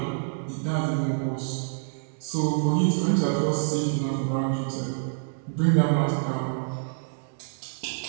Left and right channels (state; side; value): silent; left; 60 dB below the other